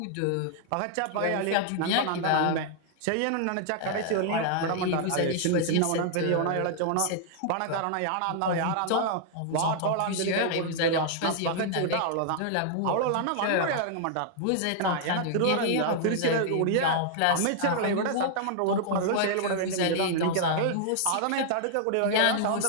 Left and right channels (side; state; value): both; different; correlation -0.01